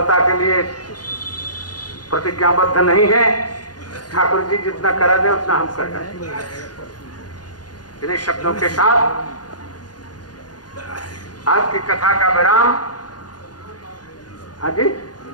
के लिए प्रतिज्ञाबद्ध नहीं है। ठाकुर जी जितना करा दे उतना हम कर जाए। इन्हीं शब्दों के साथ आज की कथा का विराम। हाँ जी,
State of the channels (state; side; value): late; right; 0.69 ms